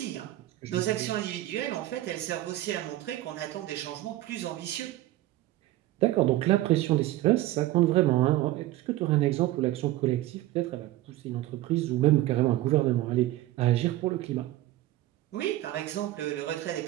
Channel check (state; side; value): quieter; left; 15.8 dB